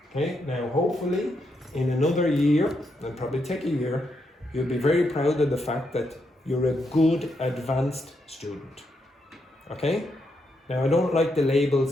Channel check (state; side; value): normal; both; correlation 0.80